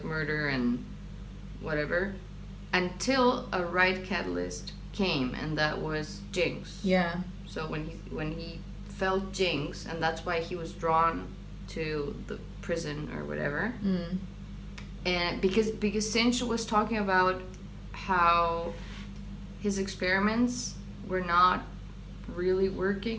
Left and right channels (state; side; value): identical; both; correlation 1.00